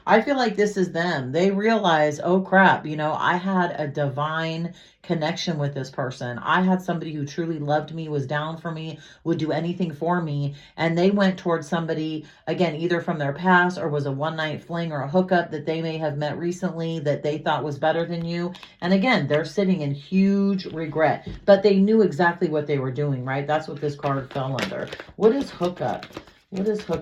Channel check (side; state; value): both; identical; correlation 1.00